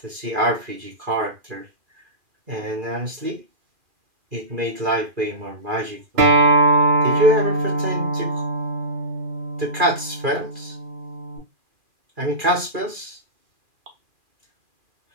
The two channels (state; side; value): late; left; 2.4 ms